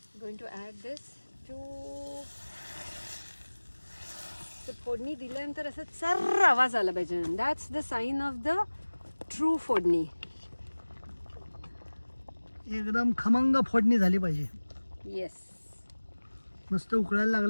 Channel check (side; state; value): both; inverted; correlation -1.00